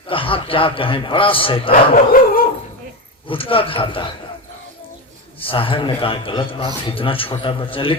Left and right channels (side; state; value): both; normal; correlation 0.17